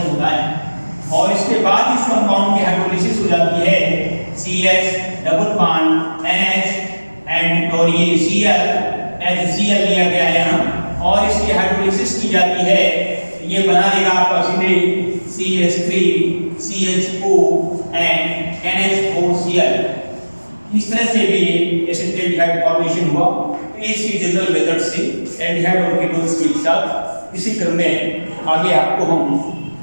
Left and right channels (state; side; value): inverted; both; correlation -1.00